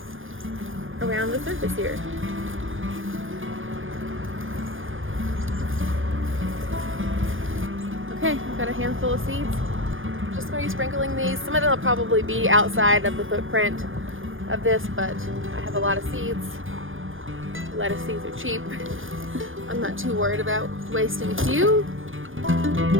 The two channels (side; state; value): left; late; 0.58 ms